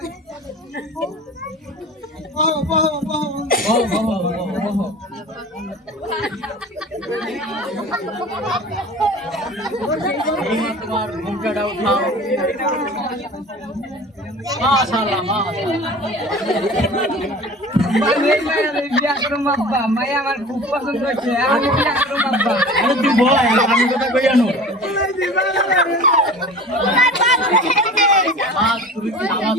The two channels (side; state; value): both; normal; correlation 0.39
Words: তোমার ঘুমটাটা উঠাও মাশাআল্লাহ মায়া আমার খুব পছন্দ হয়েছে আমি বিয়া করব আব্বা তুই বল আমি কথা কই আনো তুমি কি নামাজ